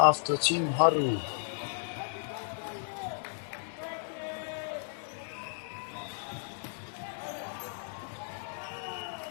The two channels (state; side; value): silent; right; digital silence